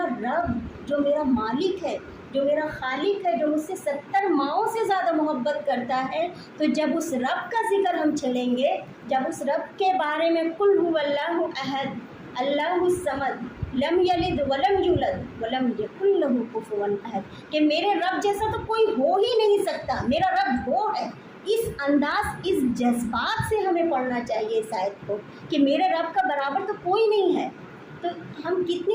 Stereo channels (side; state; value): both; identical; correlation 1.00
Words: رب جو میرا مالک ہے، جو میرا خالق ہے، جو مجھ سے 70 ماؤں سے زیادہ محبت کرتا ہے، تو جب اس رب کا ذکر ہم چھیڑیں گے، جب اس رب کے بارے میں قل هو اللہ احد اللہ الصمد لم یلد ولم یولد ولم یکن لہ کفوا احد، کہ میرے رب جیسا تو کوئی ہو ہی نہیں سکتا، میرا رب وہ ہے، اس انداز، اس جذبات سے ہمیں پڑھنا چاہیے اس آیت کو کہ میرے رب کا برابر تو کوئی نہیں ہے۔ تو ہم